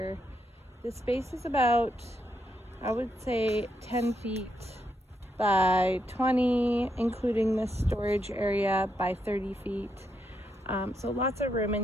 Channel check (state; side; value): normal; both; correlation 0.80